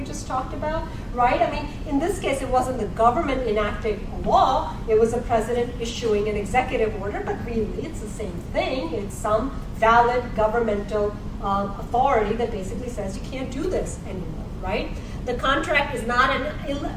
just talked about, right? I mean, in this case, it wasn't the government enacting a law, it was the president issuing an executive order, but really it's the same thing. It's some valid governmental authority that basically says you can't do this anymore, right? The contract is not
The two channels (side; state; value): both; identical; correlation 1.00